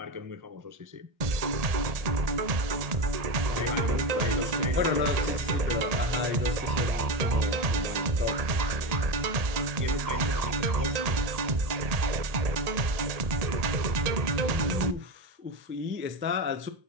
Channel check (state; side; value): late; left; 1.8 ms